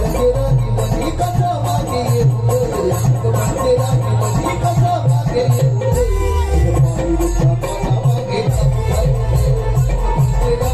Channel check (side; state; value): both; identical; correlation 1.00